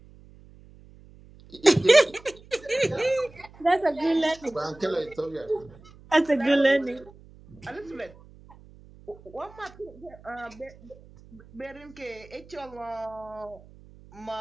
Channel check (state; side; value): noise; right; hum, 23 dB below the sound